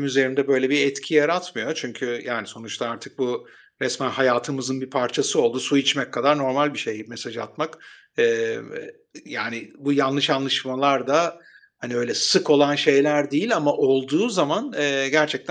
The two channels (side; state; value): both; identical; correlation 1.00